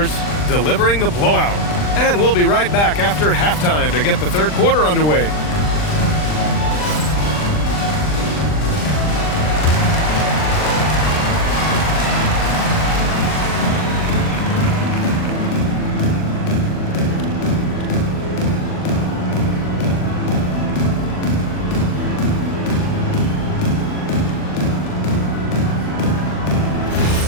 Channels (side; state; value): right; late; 39 ms